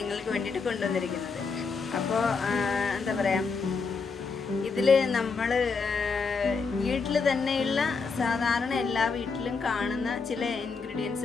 വേണ്ടിയിട്ട് കൊണ്ടുവന്നിരിക്കുന്നത്. അപ്പോൾ എന്താ പറയുക, ഇതിൽ നമ്മൾ വീട്ടിൽ തന്നെയുള്ള സാധാരണ എല്ലാ വീട്ടിലും കാണുന്ന ചില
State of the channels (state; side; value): quieter; right; 4.8 dB